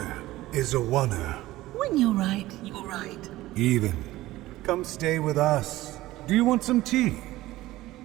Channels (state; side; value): quieter; left; 16.9 dB